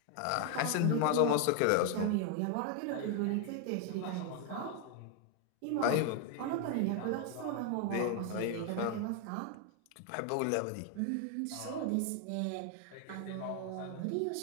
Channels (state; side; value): different; both; correlation 0.00